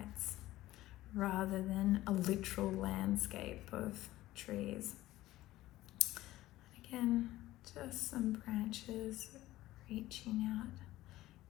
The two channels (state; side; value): quieter; right; 16.2 dB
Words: rather than a literal landscape of trees. Again, just some branches reaching out